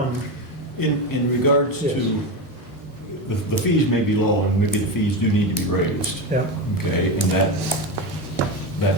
In regards Yes. to, the fees may be low, and maybe the fees do need to be raised. yeah, Okay, and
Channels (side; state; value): both; normal; correlation 0.17